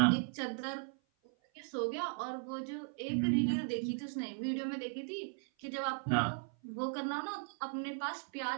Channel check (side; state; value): left; silent; 53 dB below the other